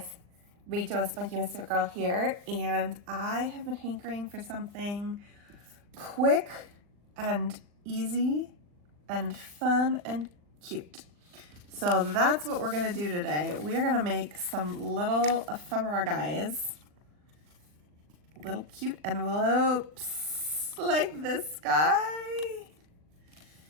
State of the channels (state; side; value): late; left; 39 ms